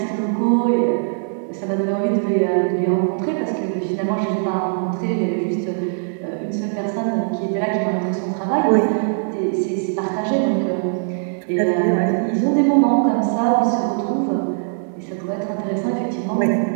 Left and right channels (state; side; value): silent; left; digital silence